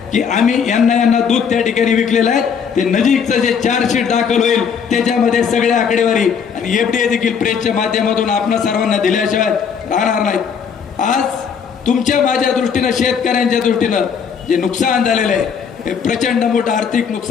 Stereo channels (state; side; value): quieter; right; 6.8 dB